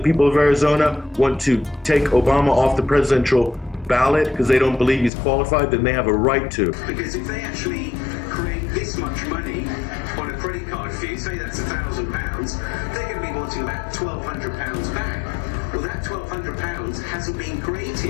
of Arizona want to take Obama off the presidential ballot because they don't believe he's qualified, then they have a right to. Because if they actually create this much money on a credit card fee, say that's £1,000, they're going to be wanting about £1,200 back. Well, that £1,200 hasn't been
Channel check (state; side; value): drops out; right; at 5.1 s